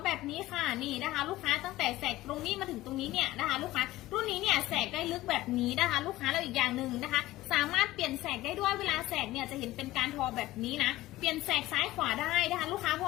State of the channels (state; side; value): quieter; right; 16.9 dB